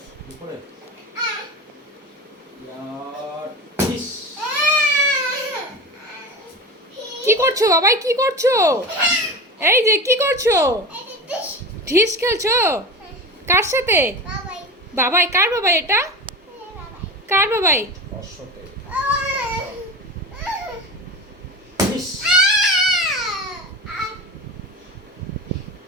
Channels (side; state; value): both; normal; correlation 0.29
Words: দুপুরে কি করছো বাবাই, কি করছো? এই যে কি করছো? ঢিস খেলছো? কার সাথে? বাবাই। কার বাবাই এটা? কার বাবাই?